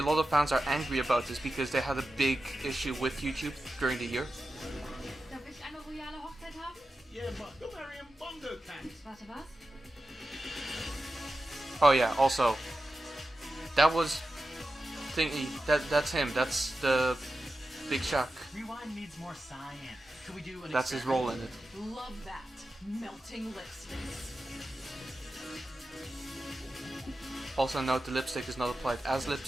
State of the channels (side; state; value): both; normal; correlation 0.92